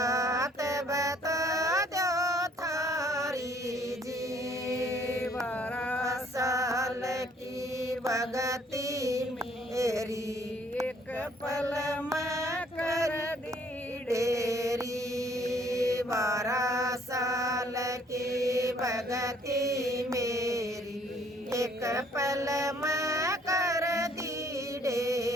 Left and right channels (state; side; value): normal; both; correlation 0.62